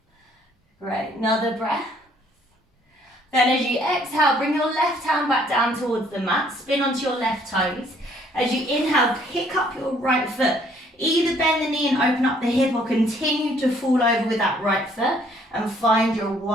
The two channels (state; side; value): normal; both; correlation 0.63